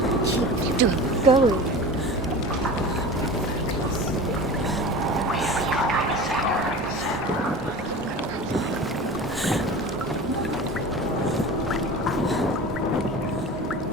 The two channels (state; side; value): normal; both; correlation 0.34